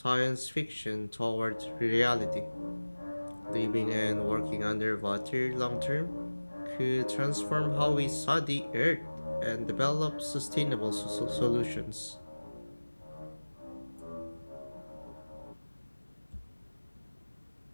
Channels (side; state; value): both; inverted; correlation -1.00